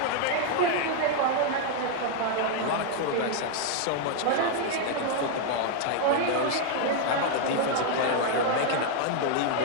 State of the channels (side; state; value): both; different; correlation 0.00